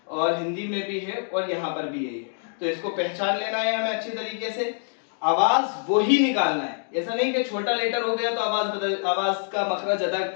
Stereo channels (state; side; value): silent; right; digital silence